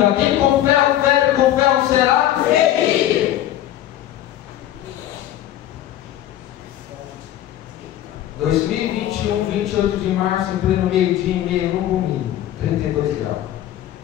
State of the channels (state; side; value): quieter; right; 12.6 dB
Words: Quem com ferro fere, com ferro será ferido. 2021, 28 de março, em pleno meio-dia e meia, no domingo, 32 graus.